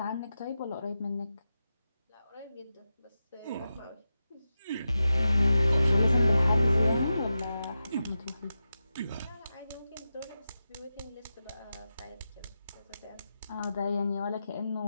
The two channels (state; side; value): inverted; both; correlation -0.91